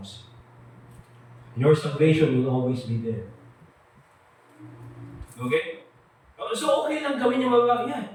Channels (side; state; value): both; identical; correlation 1.00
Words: you. Your salvation will always be there. Okay? So okay lang gawin yung